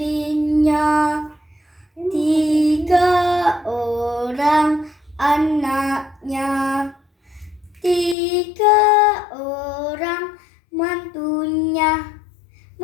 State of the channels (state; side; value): drops out; right; at 8.2 s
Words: 3 orang anaknya, 3 orang mantunya